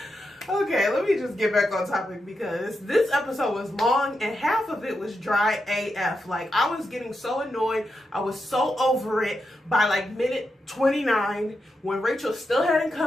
Okay, let me just get back on topic because this episode was long and half of it was dry AF. Like, I was getting so annoyed. I was so over it by like minute 29 when Rachel still hadn't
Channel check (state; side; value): normal; both; correlation 0.86